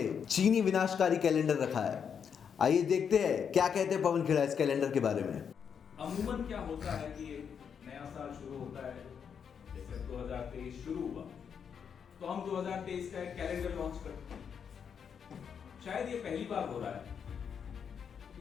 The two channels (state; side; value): quieter; right; 7.2 dB